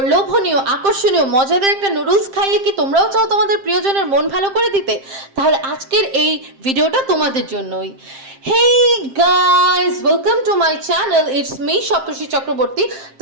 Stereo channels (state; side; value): late; left; 7.6 ms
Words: লোভনীয়, আকর্ষণীয়, মজাদার একটা নুডলস খাইয়ে কি তোমরাও চাও তোমাদের প্রিয়জনের মন ভালো করে দিতে? তাহলে আজকের এই ভিডিওটা তোমাদের জন্যই। Hey guys, welcome to my channel, it's me Saptarshi Chakraborty.